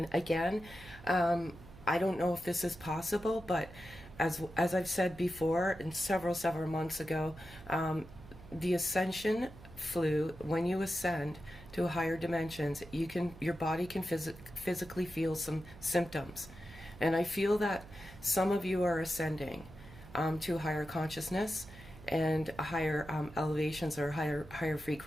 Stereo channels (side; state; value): right; noise; hum, 18 dB below the sound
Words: again, I don't know if this is possible, but as I've said before, and several months ago, the Ascension flu, when you ascend to higher dimensions, your body can physically feel some symptoms. And I feel that some of you are ascending to a higher consciousness and higher elevations, or higher